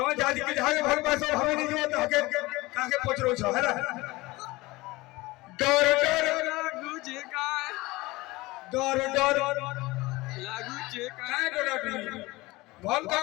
जाति के जहां भर पास हमें नहीं जो हके काके पचरो छ है ना डर डर लागू जे का डर डर लागू जे का डर डर भल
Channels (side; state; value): right; quieter; 21.1 dB